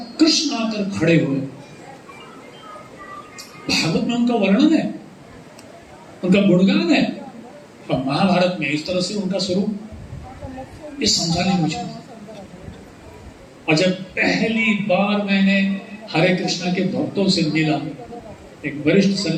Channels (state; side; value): identical; both; correlation 1.00